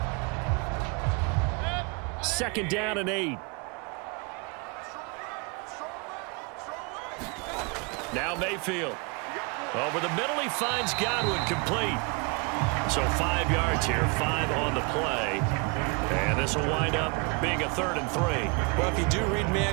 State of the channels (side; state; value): left; quieter; 31.5 dB